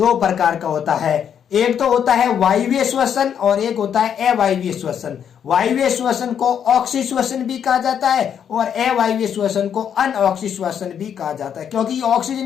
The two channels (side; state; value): right; quieter; 8.5 dB